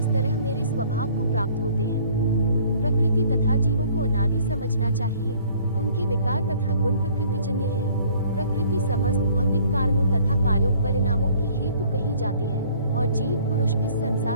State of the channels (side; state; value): both; inverted; correlation -0.56